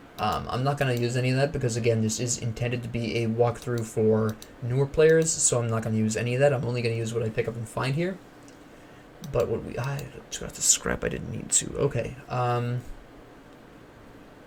I'm not going to use any of that because, again, this is intended to be a walkthrough for newer players, so I'm not going to use any of that. I'm only going to use what I pick up and find here. But what we... I got the scrap I didn't need to. Okay. I'm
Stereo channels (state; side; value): identical; both; correlation 1.00